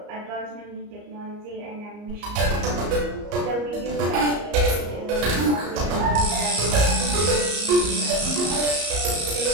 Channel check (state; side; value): late; left; 34 ms